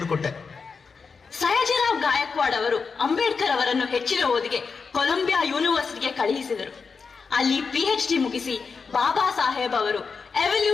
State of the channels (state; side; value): quieter; right; 5.1 dB